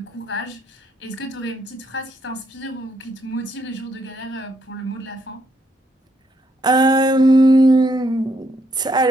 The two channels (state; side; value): normal; both; correlation 0.74